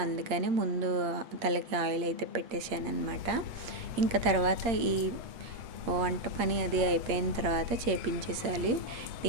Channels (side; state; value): left; late; 8.7 ms